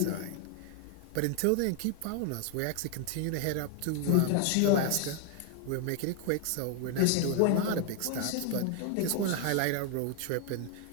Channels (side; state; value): both; different; correlation 0.00